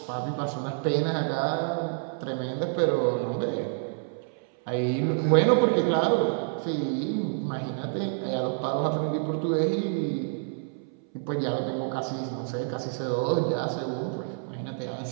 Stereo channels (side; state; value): left; silent; 59 dB below the other